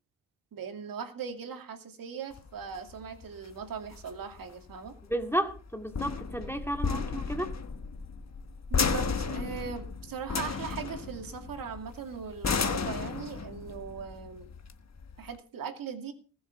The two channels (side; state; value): both; normal; correlation 0.33